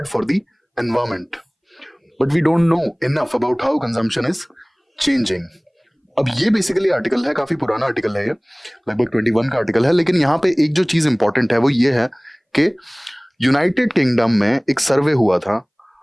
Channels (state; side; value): identical; both; correlation 1.00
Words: for the environment but we don't know enough about how consumption is changing. अब ये बेसिकली आर्टिकल है, काफी पुराना आर्टिकल है, ये लगभग 21 का आर्टिकल है। लेकिन यहाँ पे एक जो चीज इंपॉर्टेंट है वो ये है कि यूनाइटेड किंगडम में एक सर्वे हुआ था